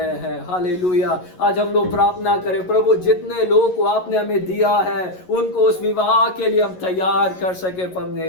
हैं। हालेलुया। आज हम लोग प्रार्थना करें, प्रभु जितने लोगों को आपने हमें दिया है उनको उस विवाह के लिए हम तैयार कर सके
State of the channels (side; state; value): right; late; 11 ms